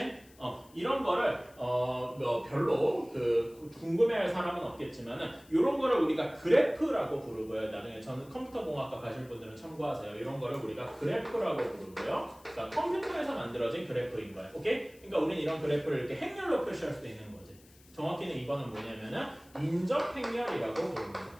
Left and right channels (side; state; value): left; noise; hiss, 26 dB below the sound